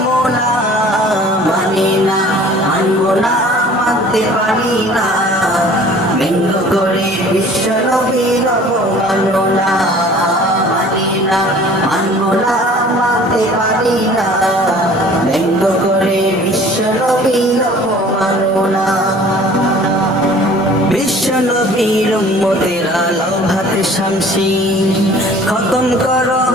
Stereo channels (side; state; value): both; normal; correlation 0.49